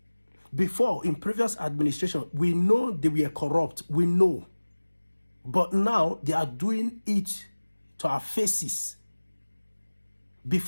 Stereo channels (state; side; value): inverted; both; correlation -1.00